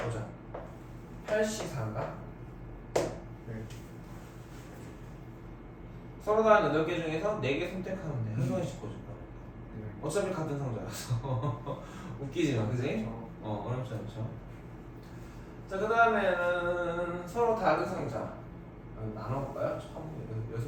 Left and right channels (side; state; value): both; identical; correlation 1.00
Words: 8시 4인가? 네. 서로 다른 8개 중에서 4개 선택하면 돼. 한 송이씩 꽂을 거야. 네. 어차피 같은 상자라서 웃기지만, 그지? 어렵지 않죠. 자, 그 다음에는 서로 다른 상자 나눠볼까요?